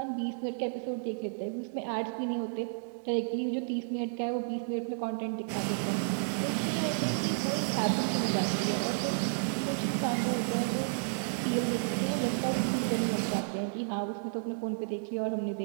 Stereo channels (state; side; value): silent; left; digital silence